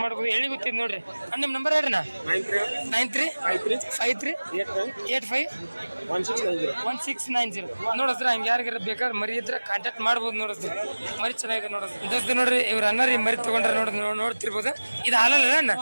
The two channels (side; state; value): both; inverted; correlation -1.00